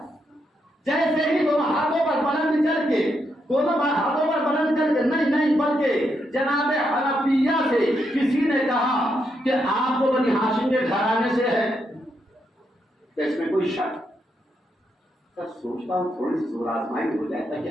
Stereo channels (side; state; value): both; normal; correlation 0.80